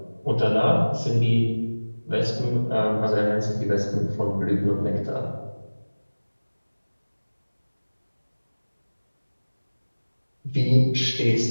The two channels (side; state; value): both; inverted; correlation -1.00